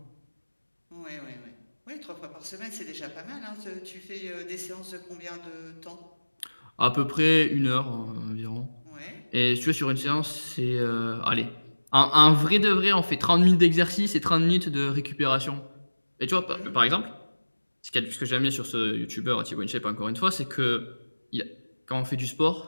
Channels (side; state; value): both; inverted; correlation -1.00